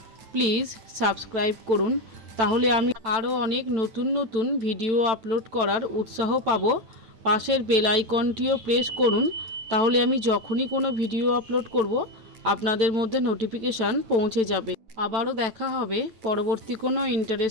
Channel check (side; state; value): left; late; 9.2 ms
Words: প্লিজ সাবস্ক্রাইব করুন, তাহলে আমি আরও অনেক নতুন নতুন ভিডিও আপলোড করার উৎসাহ পাব। পাশের বেল আইকনটিও প্রেস করুন, তাহলে আমি যখনই কোনো ভিডিও আপলোড করব আপনাদের মধ্যে নোটিফিকেশান পৌঁছে যাবে। আবারও দেখা হবে পরবর্তী কোনো